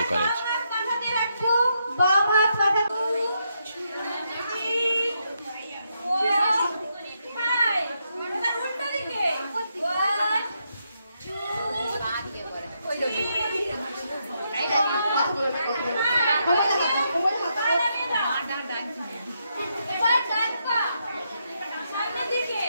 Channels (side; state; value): both; inverted; correlation -0.80